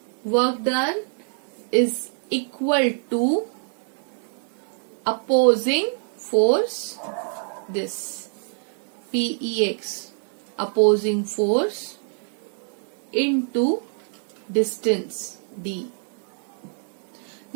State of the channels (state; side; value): silent; left; 59 dB below the other